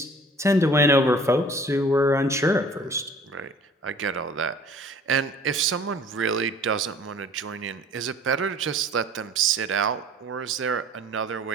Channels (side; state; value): both; normal; correlation 0.50